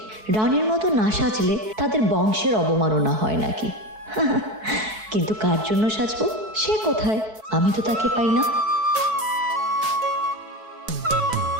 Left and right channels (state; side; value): late; left; 4.6 ms